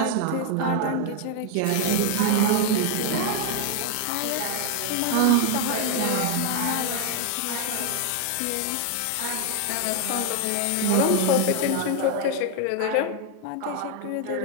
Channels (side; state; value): both; different; correlation 0.00